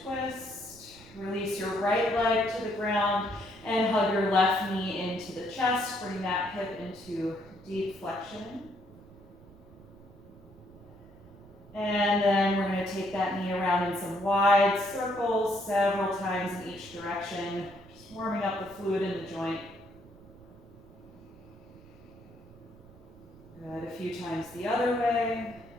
twist. Release your right leg to the ground and hug your left knee into the chest. Bring that hip into deep flexion. And then we're going to take that knee around in some wide circles several times in each direction, just warming up the fluid in the joint. Good, a few times the other way.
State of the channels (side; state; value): right; noise; rumble, 22 dB below the sound